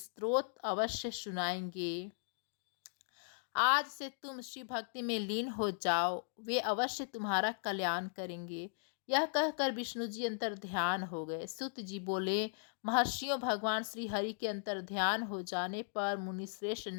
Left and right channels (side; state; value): right; silent; digital silence